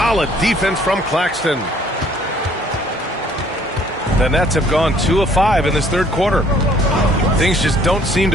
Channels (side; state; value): both; normal; correlation 0.60